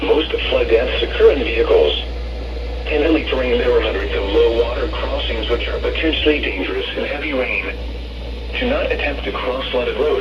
Most flood deaths occur in vehicles. In hilly terrain, there are hundreds of low-water crossings which are potentially dangerous in heavy rain. Do not attempt to cross flooded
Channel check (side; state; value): both; identical; correlation 1.00